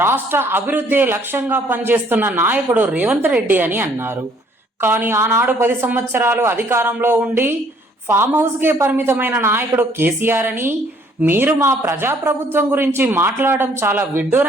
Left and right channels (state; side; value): normal; both; correlation 0.62